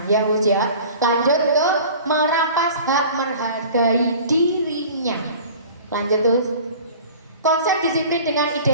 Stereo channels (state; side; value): inverted; both; correlation -0.42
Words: Ya Gus ya. Lanjut ke merampas hak menghargai dirinya. Lanjut terus. Konsep disiplin dengan